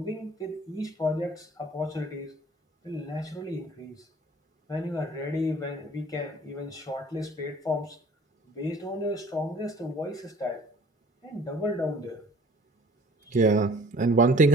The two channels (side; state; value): both; normal; correlation 0.51